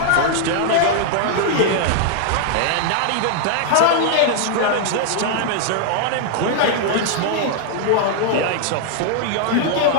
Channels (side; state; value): both; different; correlation 0.00